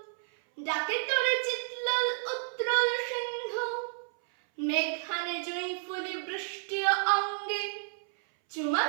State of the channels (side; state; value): left; silent; 57 dB below the other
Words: ডাকে তোরে চিৎলোল উত্রল সিন্ধু, মেঘানে জুঁই ফুলি বৃষ্টি অঙ্গে, চুমা